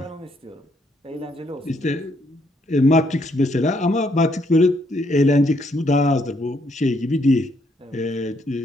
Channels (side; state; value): both; normal; correlation 0.72